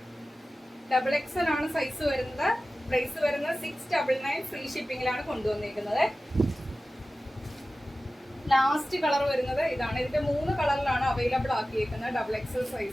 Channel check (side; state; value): both; normal; correlation 0.95